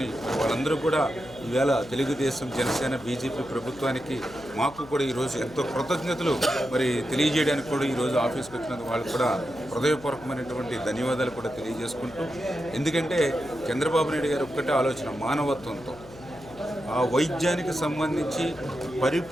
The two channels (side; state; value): left; noise; hum, 20 dB below the sound